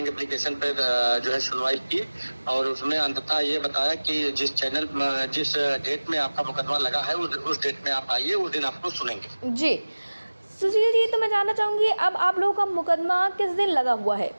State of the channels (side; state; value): both; inverted; correlation -1.00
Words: एप्लीकेशन पर जो है सुनवाई की और उसमें अंततः ये बताया कि जिस डेट में आपका मुकदमा लगा है उस डेट में आप आइए, उस दिन आपको सुनेंगे। जी सुशील जी, तो मैं जानना चाहूंगी अब आप लोगों का मुकदमा किस दिन लगा हुआ है।